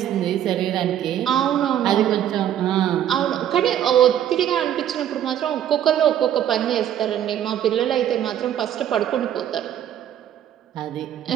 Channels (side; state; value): left; quieter; 10.7 dB